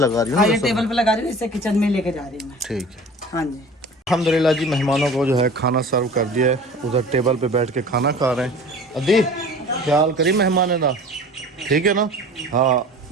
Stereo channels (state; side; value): normal; both; correlation 0.42